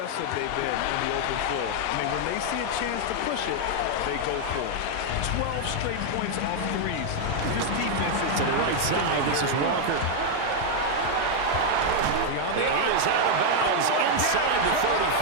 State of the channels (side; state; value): both; different; correlation 0.00